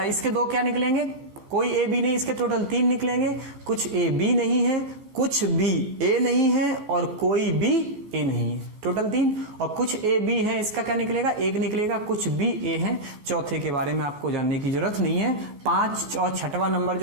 इसके 2 क्या निकलेंगे? कोई ए बी नहीं, इसके टोटल 3 निकलेंगे। कुछ ए बी नहीं है, कुछ बी ए नहीं है और कोई बी ए नहीं है, टोटल 3। और कुछ ए बी है, इसका क्या निकलेगा? 1 निकलेगा। कुछ बी ए है। चौथे के बारे में आपको जानने की जरूरत नहीं है। 5 और 6वां नंबर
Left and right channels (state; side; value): late; left; 14 ms